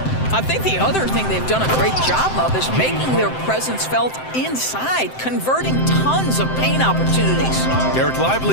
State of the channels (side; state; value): right; late; 7.7 ms